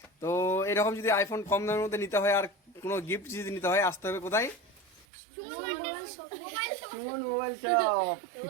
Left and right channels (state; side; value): drops out; left; at 5.1 s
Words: তো এরকম যদি আইফোন কম দামের মধ্যে নিতে হয় আর কোনো গিফট যদি নিতে হয়, আসতে হবে কোথায়? Suman mobile shop.